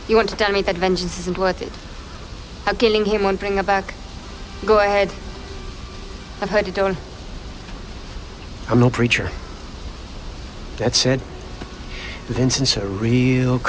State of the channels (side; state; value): both; identical; correlation 1.00